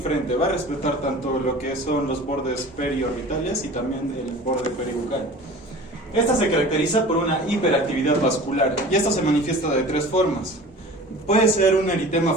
Va a respetar tanto lo que son los bordes periorbitales y también el borde peribucal. Esta se caracteriza por una hiperactividad vascular y esto se manifiesta de tres formas. Puede ser un eritema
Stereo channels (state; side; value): normal; both; correlation 0.41